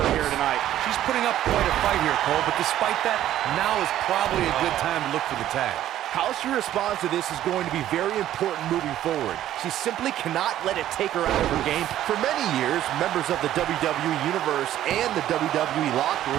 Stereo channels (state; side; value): quieter; left; 12.5 dB